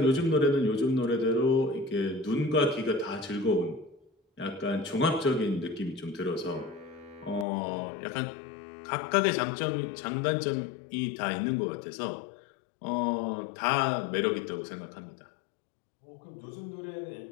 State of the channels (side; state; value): right; drops out; at 7.5 s